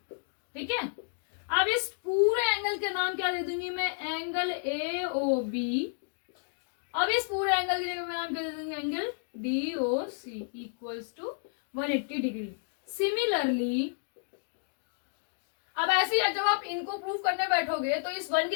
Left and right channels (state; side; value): silent; right; digital silence